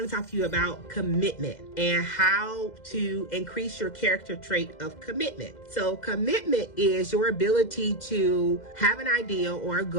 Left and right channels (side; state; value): right; late; 2.0 ms